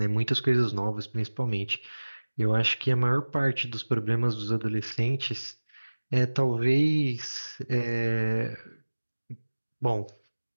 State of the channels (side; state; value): both; inverted; correlation -1.00